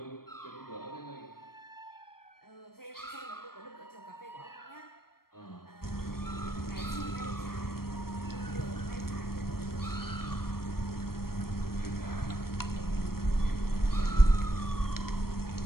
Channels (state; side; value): late; right; 0.94 ms